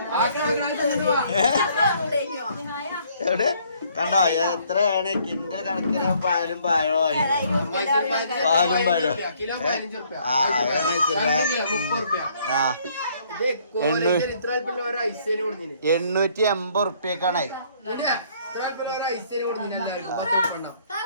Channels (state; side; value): inverted; both; correlation -0.64